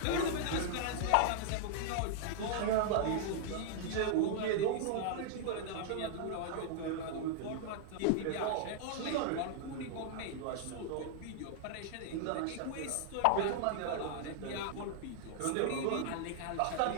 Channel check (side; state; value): both; different; correlation -0.01